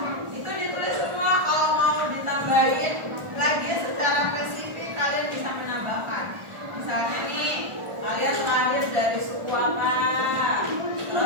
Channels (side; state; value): left; late; 1.4 ms